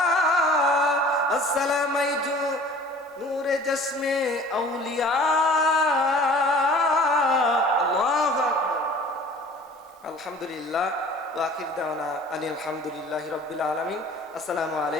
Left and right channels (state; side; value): normal; both; correlation 0.47